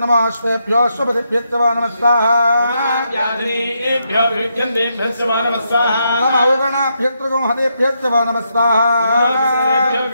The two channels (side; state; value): both; inverted; correlation -0.80